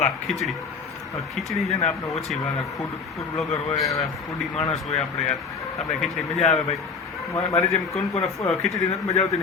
ખીચડી. ખીચડી છે ને આપણે ઓછી ભાવે. ફૂડ બ્લોગર હોય, ફૂડી માણસ હોય આપણે યાર, આપણે ખીચડી મજા આવે ભાઈ. મારી જેમ કોણ કોને ખીચડી નથી મજા આવતી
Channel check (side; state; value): right; quieter; 5.1 dB